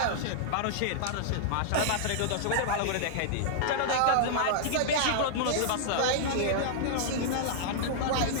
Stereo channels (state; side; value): different; both; correlation -0.01